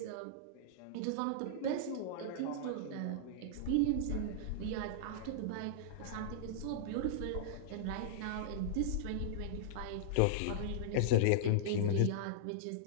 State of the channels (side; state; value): both; different; correlation -0.02